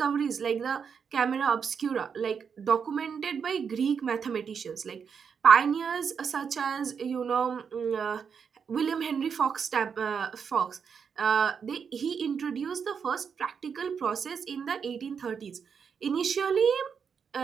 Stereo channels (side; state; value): left; quieter; 6.6 dB